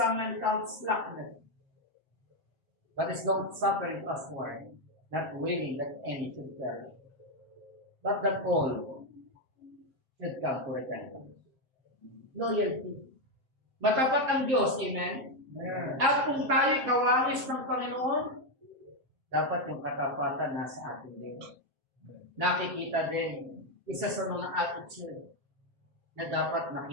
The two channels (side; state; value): left; late; 7.6 ms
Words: men count slackness, but is long-suffering usward, not willing that any should perish, but that all should come to repentance. Loyalty. Matapat ang Diyos, amen? At kung tayo kawangis ng Panginoon, dapat yung katapatan nasa atin din. Nakikita din, isa sa mga attitude na dapat